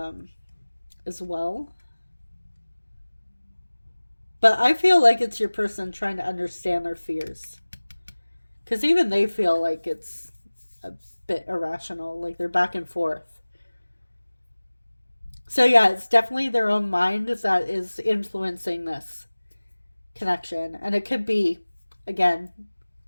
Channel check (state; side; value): inverted; both; correlation -1.00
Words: as well. But I feel like it's your person trying to understand their fears. Because even they feel like it's a bit irrational, like they're back and forth. So yeah, it's definitely their own mind that is influencing this connection. And it could be, again,